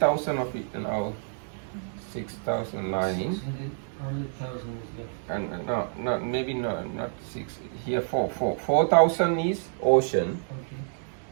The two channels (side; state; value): left; silent; digital silence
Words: of it, now 6,009. 600,000 is left. And no, maybe no, not 6. Here 4,000 is ocean.